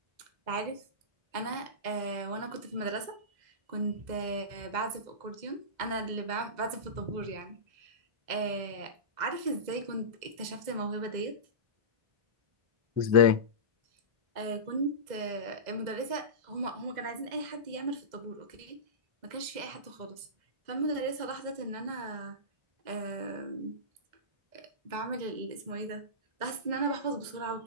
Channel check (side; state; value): left; late; 2.0 ms